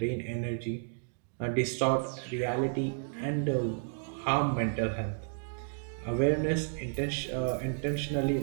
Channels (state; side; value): silent; left; digital silence